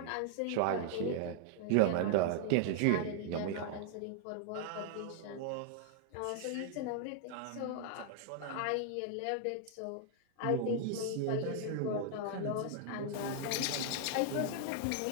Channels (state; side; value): different; both; correlation 0.00